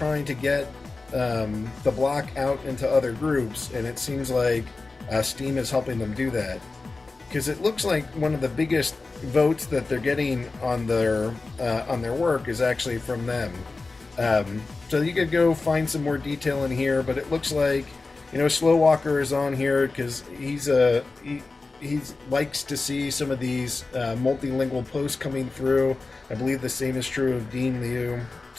to get the block out into other groups, and it seems like Steem is helping them do that, because it looks like one of the biggest votes that they're getting on their work is actually from them. So you could go find some more detail in here, but it looks like, Slow Walker is on here because he likes to see some of these multilingual posts coming through. I believe the same is true of Dean Liu.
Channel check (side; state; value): right; quieter; 3.7 dB